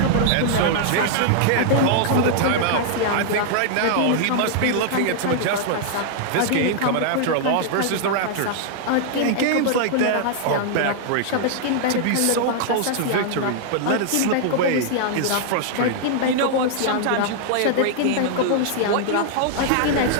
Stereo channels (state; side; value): different; both; correlation -0.01